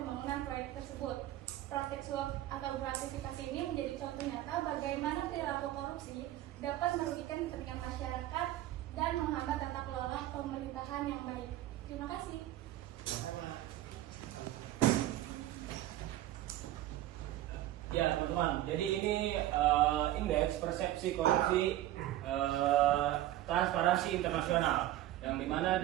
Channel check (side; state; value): left; quieter; 14.3 dB